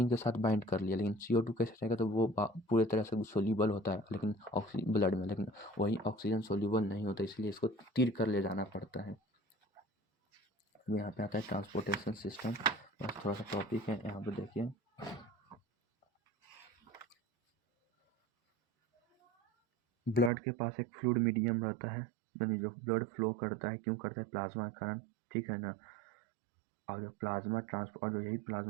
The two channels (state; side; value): drops out; left; at 20.3 s